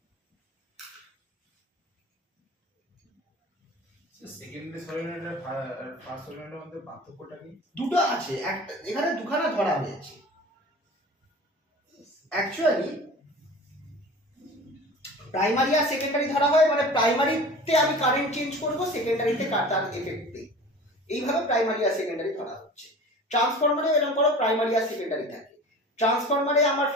Secondary solenoid আর ফার্স্ট সলিনয়েডের মধ্যে পার্থক্যটা কি? দুটো আছে, একটা এখানে দুখানা ধরা হয়েছে। অ্যাকচুয়ালি প্রাইমারি আর সেকেন্ডারি ধরা হয়, মানে প্রাইমারিতে আমি কারেন্ট চেঞ্জ করব, সেকেন্ডারিতে তার এফেক্টে, এইভাবে প্রাইমারি আর সেকেন্ডারি ধরা হচ্ছে। ট্রান্সফরমারে এরকম করো প্রাইমারি আর সেকেন্ডারি থাকে, ট্রান্সফরমারে আমার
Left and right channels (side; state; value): both; normal; correlation 0.39